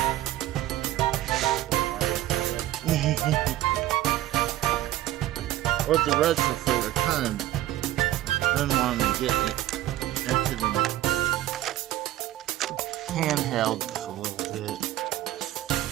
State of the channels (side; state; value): left; quieter; 14.5 dB